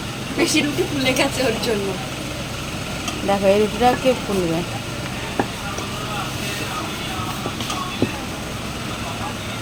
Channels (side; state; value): both; identical; correlation 1.00